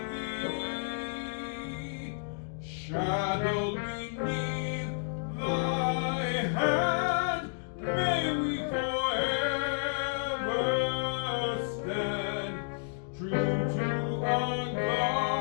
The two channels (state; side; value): silent; right; digital silence